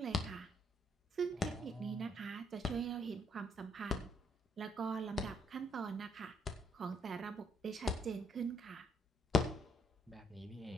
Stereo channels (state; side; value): normal; both; correlation 0.71